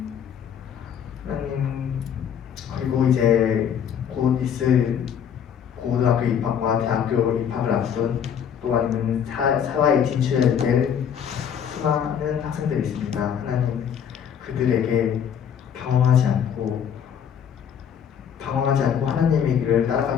하나님 그리고 이제 곧 있을 고등학교 입학과 대학교 입학을 앞둔 또 아니면 사회에 진출해야 될 수많은 학생들이 있습니다. 하나님 그들에게 방황하지 않고 하나님의 길을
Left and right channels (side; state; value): right; quieter; 8.3 dB